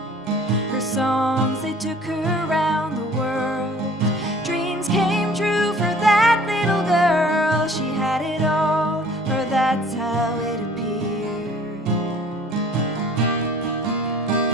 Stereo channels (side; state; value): both; normal; correlation 0.51